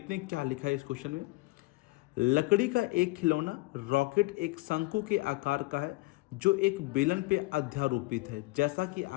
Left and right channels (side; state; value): right; quieter; 22.8 dB